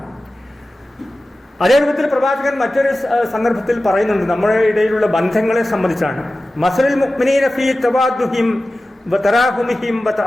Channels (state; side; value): normal; both; correlation 0.95